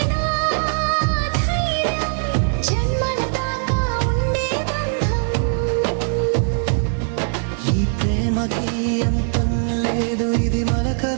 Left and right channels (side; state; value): left; silent; digital silence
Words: నా ధైర్యం, జన్మల దాకా ఉండే బంధం. ఈ ప్రేమకి అంతం లేదు, ఇది